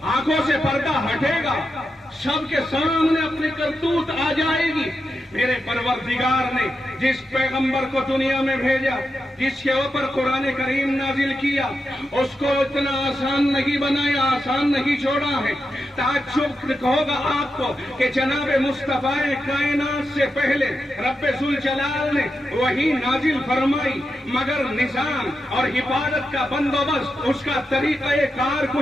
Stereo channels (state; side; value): normal; both; correlation 0.88